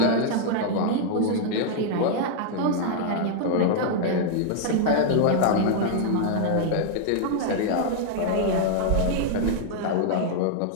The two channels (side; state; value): both; different; correlation -0.01